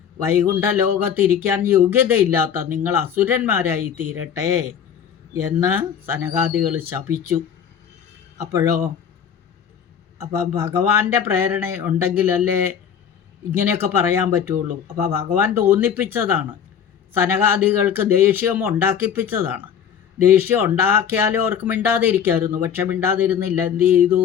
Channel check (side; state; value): right; quieter; 8.1 dB